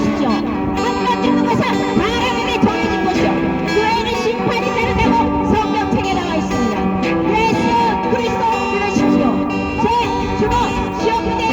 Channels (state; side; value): identical; both; correlation 1.00